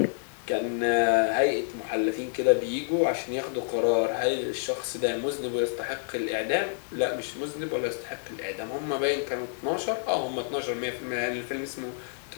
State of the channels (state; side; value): silent; right; digital silence